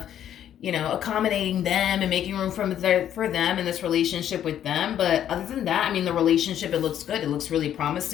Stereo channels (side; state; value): right; quieter; 10.5 dB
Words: accommodating them and making room for them in this relationship with them. But other than that, I mean, the relationship, it looks good. It looks really